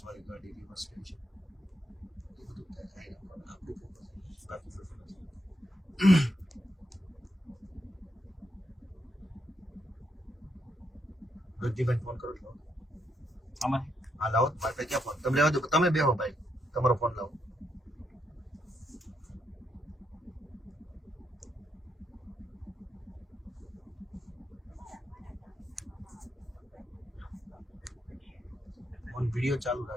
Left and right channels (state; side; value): normal; both; correlation 0.79